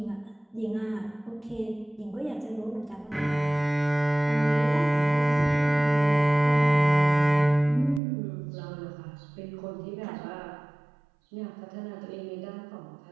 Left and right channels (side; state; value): left; drops out; at 8.0 s